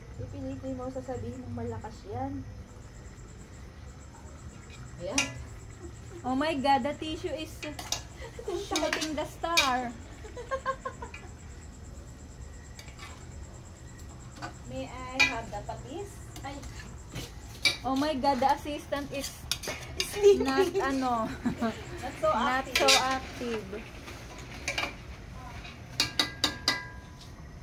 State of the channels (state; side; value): identical; both; correlation 1.00